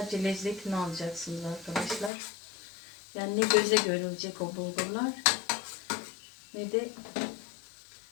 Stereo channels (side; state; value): right; drops out; at 2.1 s